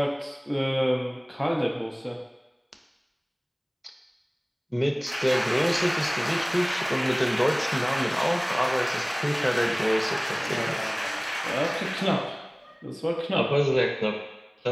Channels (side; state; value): both; identical; correlation 1.00